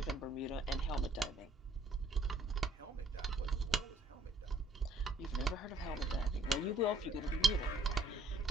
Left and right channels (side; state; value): both; normal; correlation 0.62